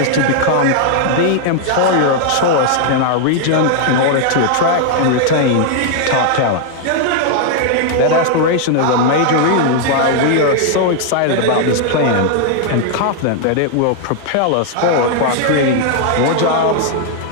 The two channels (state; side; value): different; both; correlation 0.00